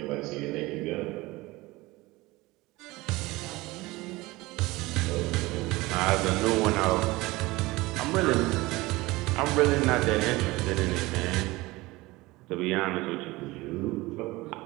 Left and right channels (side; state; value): left; quieter; 20.8 dB